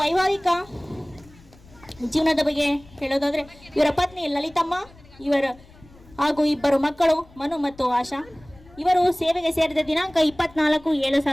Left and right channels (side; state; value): left; noise; rumble, 25 dB below the sound